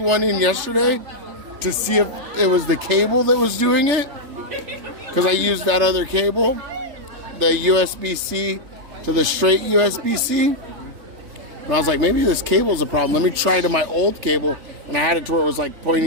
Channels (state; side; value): late; left; 3.3 ms